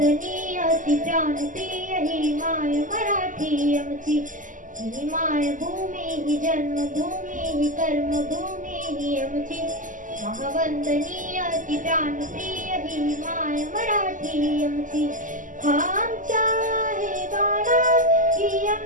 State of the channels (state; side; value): late; left; 0.38 ms